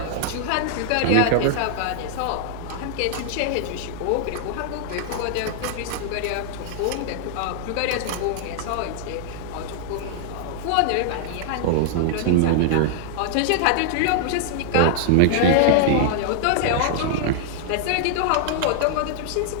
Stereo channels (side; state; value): both; different; correlation -0.01